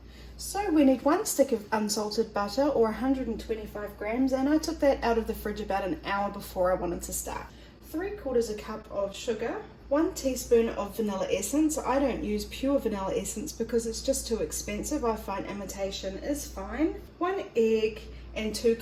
So we need 1 stick of unsalted butter or 125 grams, and I took that out of the fridge about an hour before I wanted to start. 3/4 cup of sugar, 1 teaspoon of vanilla essence. I don't use pure vanilla essence because it's just too expensive. I find imitation is fine. 1 egg and 2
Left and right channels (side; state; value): both; identical; correlation 1.00